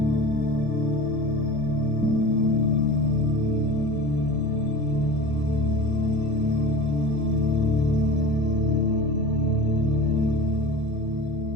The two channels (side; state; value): both; normal; correlation 0.34